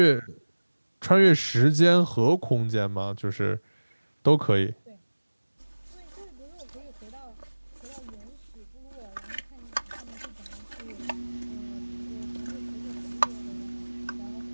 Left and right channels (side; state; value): both; inverted; correlation -1.00